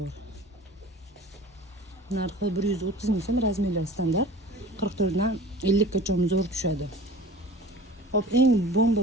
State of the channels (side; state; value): both; normal; correlation 0.42